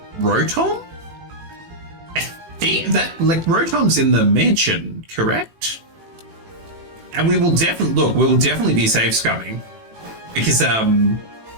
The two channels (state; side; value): late; left; 18 ms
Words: Rotom. I think that, like, Rotom's in the mansion, correct? And we will definitely be safe scumming because